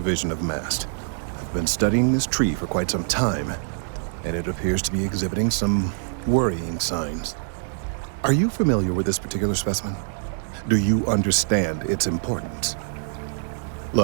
of MAST. I've been studying this tree for quite some time, and it appears to be exhibiting some worrying signs. Are you familiar with this particular specimen? Do you understand its importance?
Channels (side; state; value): left; silent; 62 dB below the other